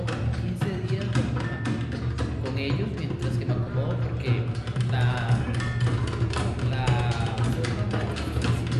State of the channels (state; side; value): identical; both; correlation 1.00